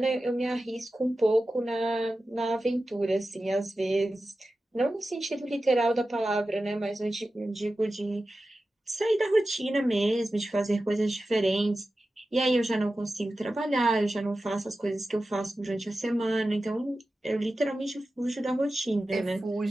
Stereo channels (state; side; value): normal; both; correlation 0.94